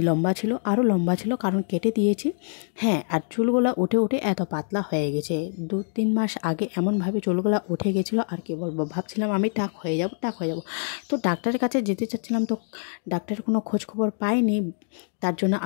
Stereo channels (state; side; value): silent; right; digital silence